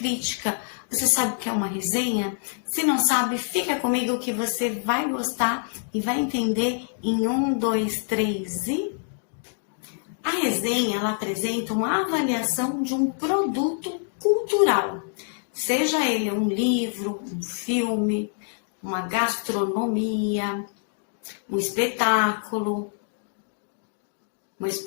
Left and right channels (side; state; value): right; silent; digital silence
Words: Você sabe o que é uma resenha? Se não sabe, fica comigo que você vai gostar e vai entender em 1, 2, 3 e... A resenha, ela apresenta uma avaliação de um produto cultural. Seja ele um livro, um filme, uma gastronomia, um espetáculo, uma